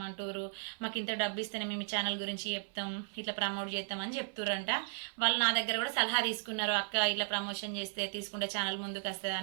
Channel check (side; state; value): left; silent; 54 dB below the other